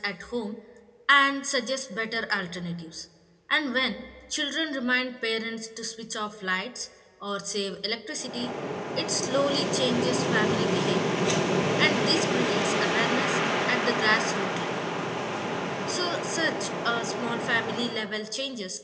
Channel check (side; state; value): both; identical; correlation 1.00